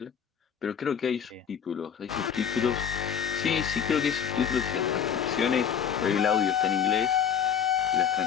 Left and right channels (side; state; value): right; quieter; 7.9 dB